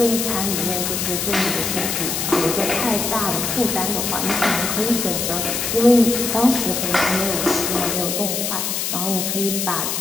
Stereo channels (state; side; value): noise; left; hiss, 1 dB below the sound